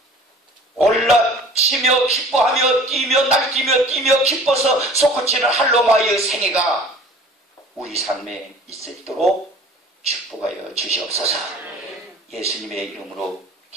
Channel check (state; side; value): normal; both; correlation 0.46